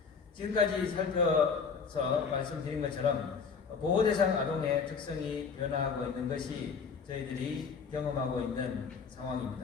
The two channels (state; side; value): quieter; right; 5.7 dB